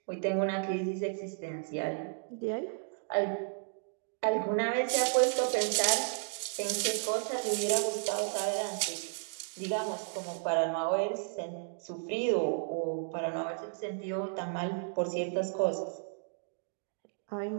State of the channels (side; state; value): left; silent; digital silence